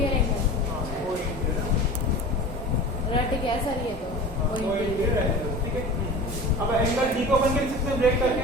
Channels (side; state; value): both; normal; correlation 0.36